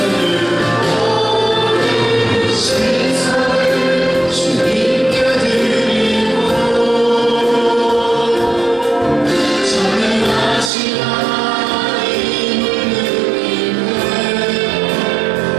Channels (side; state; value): left; drops out; at 10.7 s